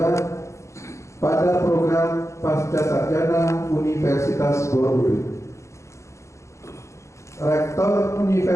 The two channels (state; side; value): late; right; 0.14 ms